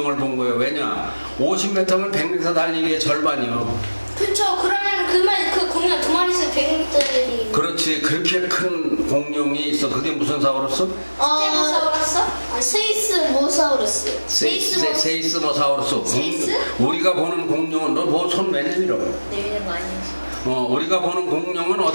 본 거예요. 왜냐? 50m면 100m 달리기의 절반이요. 그쵸. 그러면 그 공룡 두 마리 있으면 100m짜리. 그렇지. 그렇게 큰 공룡이 있어. 그게 무슨 사우루스? 스테고사우루스? 세이스모사우루스. 세이스모사우루스. 세이스? 우리가 보는 공룡은 너 뭐 손 왜 내밀어? 내리는 거 아니에요? 우리가 보는 공룡은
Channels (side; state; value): both; inverted; correlation -1.00